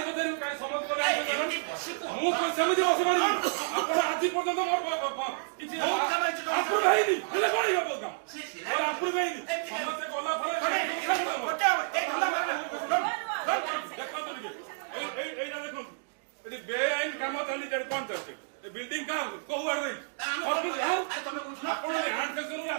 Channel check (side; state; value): left; silent; digital silence